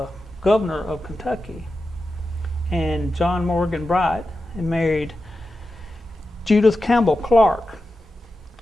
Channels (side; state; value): both; normal; correlation 0.91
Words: governor of Kentucky. And John Morgan Bright and married Judith Campbell Clark